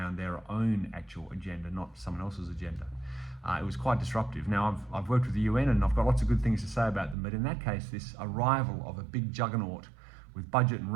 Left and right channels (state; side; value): drops out; left; at 7.2 s